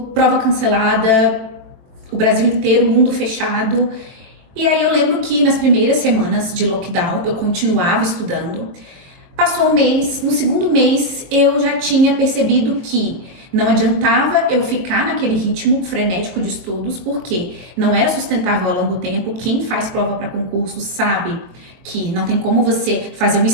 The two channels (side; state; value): left; late; 23 ms